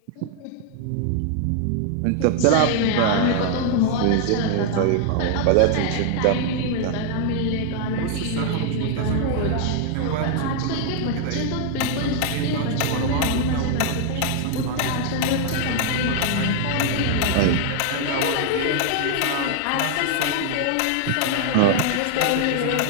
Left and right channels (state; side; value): different; both; correlation 0.00